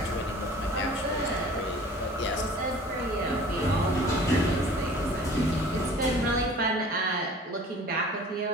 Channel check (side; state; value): both; normal; correlation 0.46